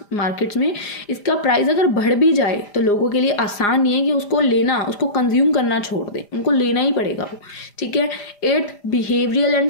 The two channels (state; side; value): late; right; 4.9 ms